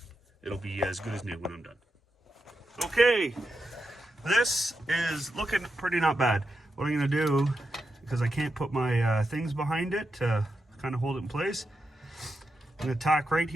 It'll be as good as new when I'm done. Okay, this is looking pretty not bad. What I'm gonna do, because I can't put my things behind it to kind of hold it in place, I'm gonna tack right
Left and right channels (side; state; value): both; normal; correlation 0.87